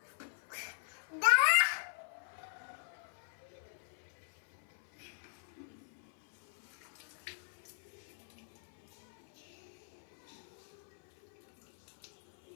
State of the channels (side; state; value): right; silent; 51 dB below the other